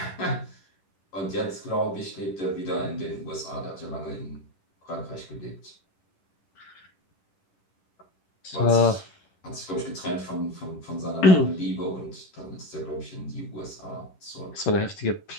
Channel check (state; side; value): late; right; 10 ms